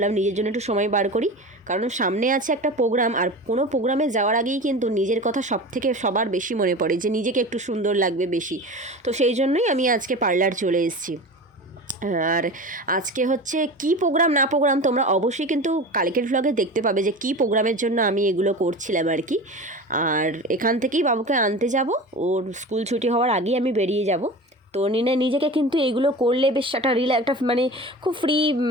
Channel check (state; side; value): normal; both; correlation 0.32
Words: নিজের জন্য একটু সময় বার করি, কারণ সামনে আছে একটা প্রোগ্রাম। আর কোনো প্রোগ্রামে যাওয়ার আগেই কিন্তু নিজের কথা সবার বেশি মনে পড়ে, যে নিজেকে একটু সুন্দর লাগবে বেশি। তো সেই জন্যই আমি আজকে পার্লার চলে এসেছি। আর আজকে হচ্ছে কি প্রোগ্রাম না প্রোগ্রাম তোমরা অবশ্যই কিন্তু কালকের ভ্লগে দেখতে পাবে যে কি প্রোগ্রামের জন্য আমি এগুলো করছিলাম আর কি। আর এখান থেকেই বাবুকে আনতে যাব, ওর স্কুল ছুটি হওয়ার আগেই আমি বেরিয়ে যাব। তো নিজেকে কিন্তু এগুলো করলে বেশ একটা মানে খুব ফ্রি,